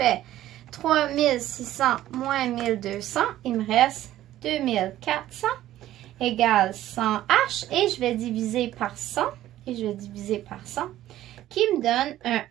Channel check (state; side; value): quieter; left; 13.7 dB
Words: 3600 moins 1200, il me reste 2400 égale 100H. Et je vais diviser par 100. Et je vais diviser par 100. Qui me donne un